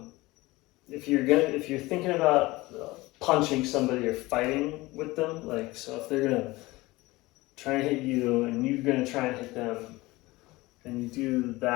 if you're thinking about punching somebody or fighting with them, like so if they're gonna try and hit you and you're gonna try and hit them, and you do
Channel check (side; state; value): right; quieter; 20.6 dB